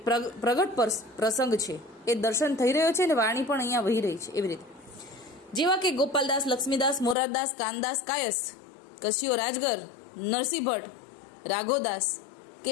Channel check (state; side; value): drops out; right; at 7.2 s